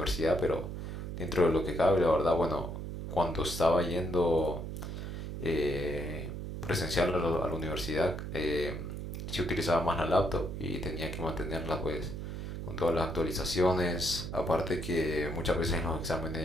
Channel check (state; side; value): noise; right; hum, 6 dB below the sound